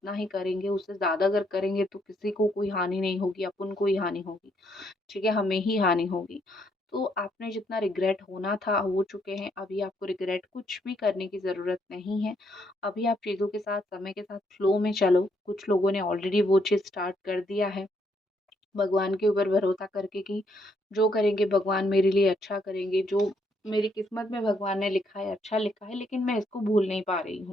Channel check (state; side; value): normal; both; correlation 0.73